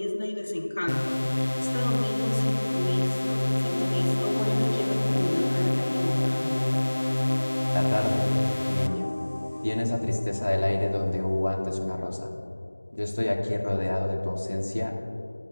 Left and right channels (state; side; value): inverted; both; correlation -1.00